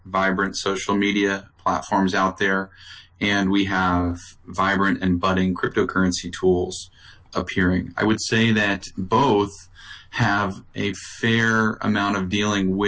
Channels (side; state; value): both; identical; correlation 1.00